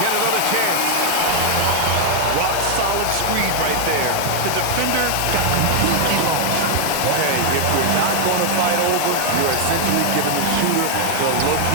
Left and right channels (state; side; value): different; both; correlation 0.00